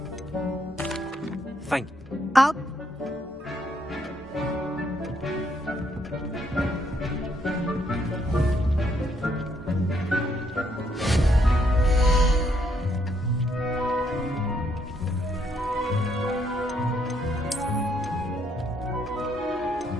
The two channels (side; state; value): both; normal; correlation 0.72